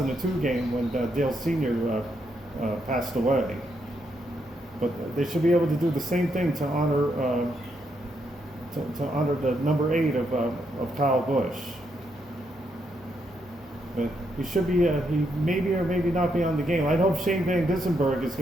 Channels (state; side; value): normal; both; correlation 0.78